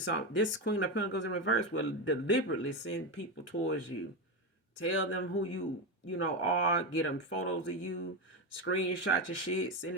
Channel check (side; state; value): both; normal; correlation 0.13